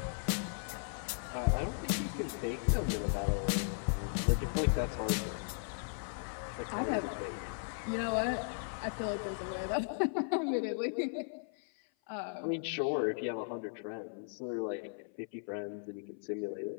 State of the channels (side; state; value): right; silent; 53 dB below the other